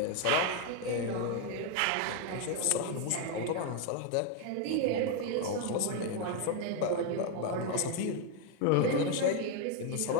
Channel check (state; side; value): different; both; correlation 0.01